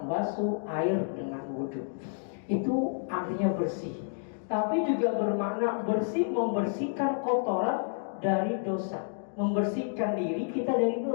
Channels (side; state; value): right; silent; digital silence